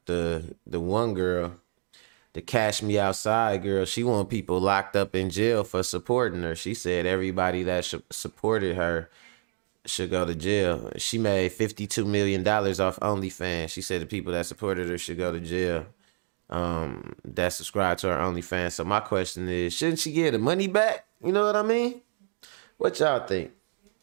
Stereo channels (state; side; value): silent; left; digital silence